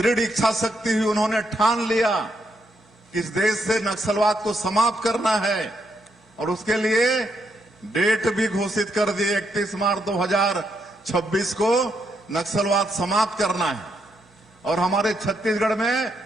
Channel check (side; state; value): both; normal; correlation 0.78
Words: इच्छा शक्ति हुई, उन्होंने ठान लिया कि इस देश से नक्सलवाद को समाप्त करना है और उसके लिए डेट भी घोषित कर दी। 31 मार्च 2026 को नक्सलवाद समाप्त करना है। और हमारे छत्तीसगढ़ में